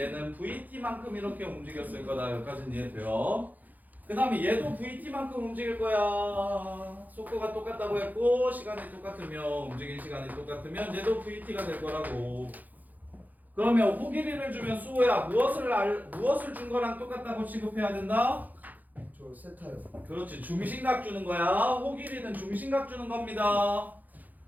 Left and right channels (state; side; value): late; left; 0.082 ms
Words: vt만큼 이렇게 움직였을 거다. 여기까지는 이해돼요. 그 다음에 얘도 vt만큼 움직일 거야. 속도가 똑같다고 했고 시간이 똑같으면 움직인 시간이 똑같으면 얘도 vt가 될 거라고. 그러면 호길이를 주면 수호야 무엇을 준 거랑 똑같다고 취급해야 된다? 저 세타요. 그렇지, 중심각 주는 거야. 호길이는 중심각 주는 겁니다.